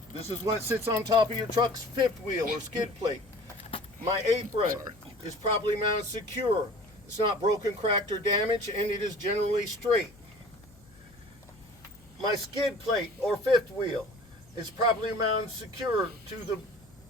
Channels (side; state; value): left; noise; hum, 26 dB below the sound